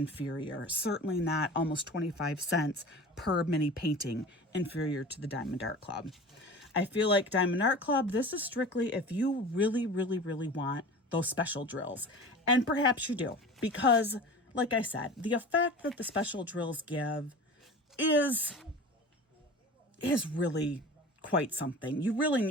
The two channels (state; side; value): normal; both; correlation 0.37